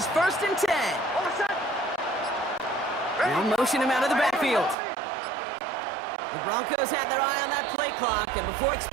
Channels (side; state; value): left; drops out; at 4.8 s